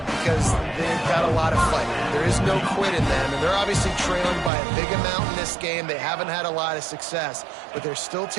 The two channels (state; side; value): drops out; left; at 4.5 s